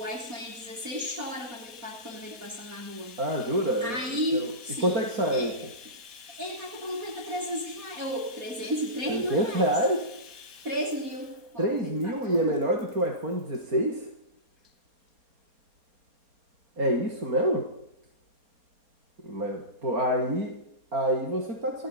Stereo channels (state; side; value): late; left; 4.3 ms